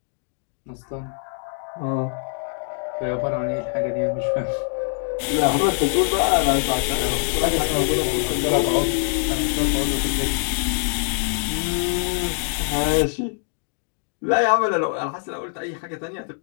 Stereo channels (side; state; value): right; silent; 63 dB below the other